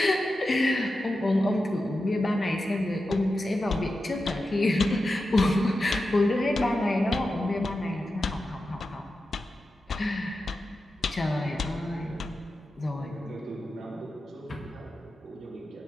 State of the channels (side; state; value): both; normal; correlation 0.91